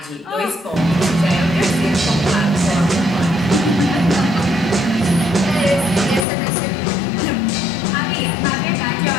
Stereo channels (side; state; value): right; drops out; at 6.2 s